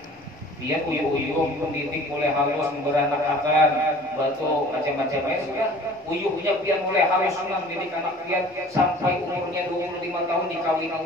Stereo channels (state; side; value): normal; both; correlation 0.47